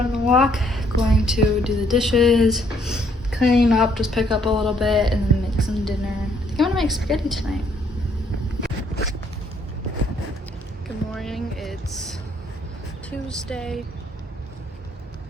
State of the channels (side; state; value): both; normal; correlation 0.67